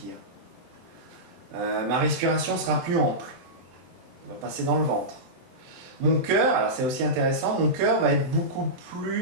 Ma respiration sera plus ample. Elle va passer dans le ventre. Mon cœur, alors c'est aussi intéressant, mon cœur va être beaucoup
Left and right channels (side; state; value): left; late; 23 ms